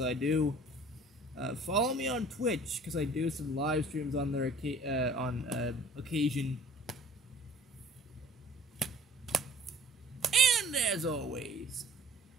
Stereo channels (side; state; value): both; normal; correlation 0.51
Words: I do. Follow me on Twitch because I do some live streams on there on occasion. And as always,